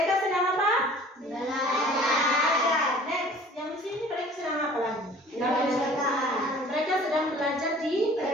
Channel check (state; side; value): normal; both; correlation 0.49